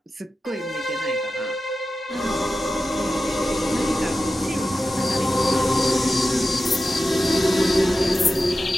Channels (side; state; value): both; normal; correlation 0.93